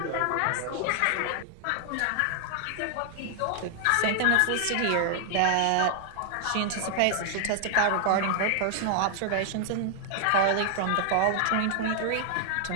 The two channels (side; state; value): both; different; correlation 0.00